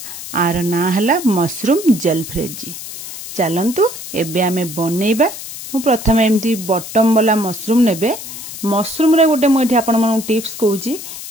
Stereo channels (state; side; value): noise; left; hiss, 10 dB below the sound